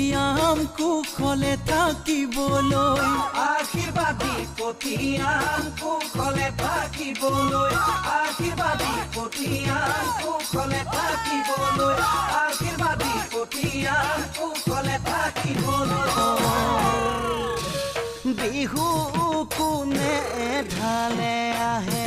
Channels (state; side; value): identical; both; correlation 1.00